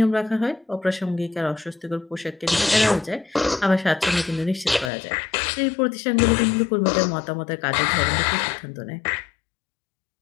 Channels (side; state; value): right; drops out; at 4.9 s